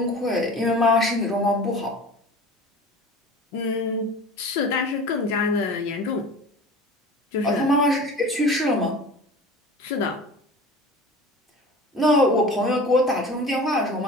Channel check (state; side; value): normal; both; correlation 0.39